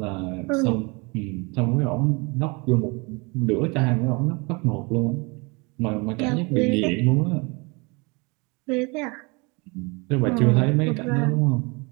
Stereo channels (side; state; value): left; quieter; 28.6 dB